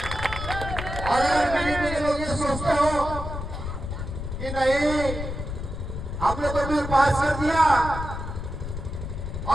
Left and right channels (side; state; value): left; noise; rumble, 6 dB below the sound